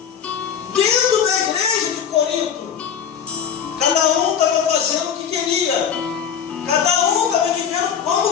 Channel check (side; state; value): right; quieter; 7.9 dB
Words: dentro da igreja de Corinto. Cada um estava fazendo o que queria, cada um estava vivendo